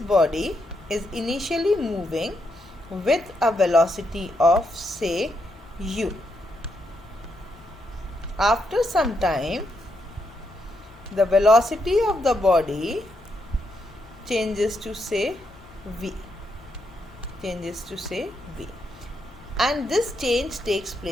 is initially moving with a velocity of say u. After some time, the velocity of the body changes to say v. And this change takes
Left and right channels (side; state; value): both; normal; correlation 0.80